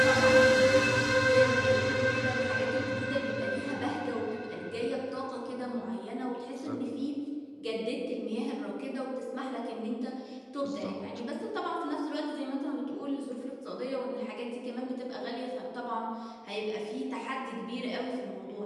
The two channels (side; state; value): both; identical; correlation 1.00